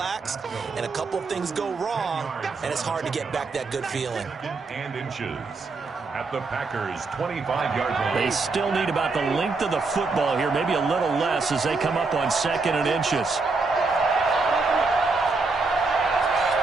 and a couple of things go wrong, and it's hard to get back that good feeling. And inches at the Packers' 25-yard line. They still need about the length of the football here, maybe a little less as they come up on 2nd and inches.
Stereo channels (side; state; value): left; quieter; 4.0 dB